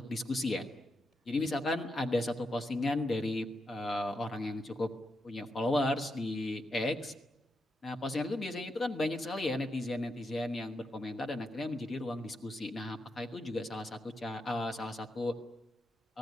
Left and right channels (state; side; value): normal; both; correlation 0.84